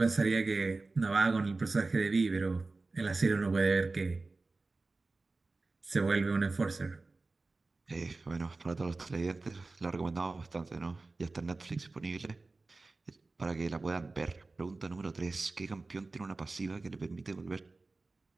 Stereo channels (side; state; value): left; quieter; 3.5 dB